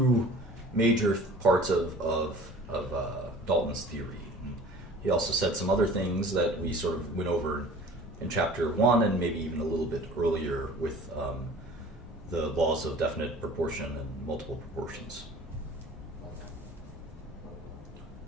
major parts of Dalton's theory. And he also said some other things that we sort of went over in chapter 1 and maybe even a little bit earlier with the laws of definite proportion and multiple proportions.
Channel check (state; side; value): normal; both; correlation 0.45